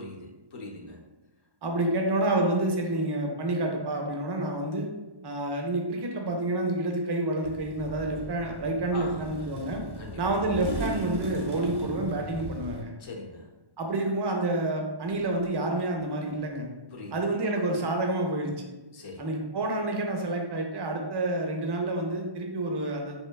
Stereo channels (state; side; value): late; left; 1.1 ms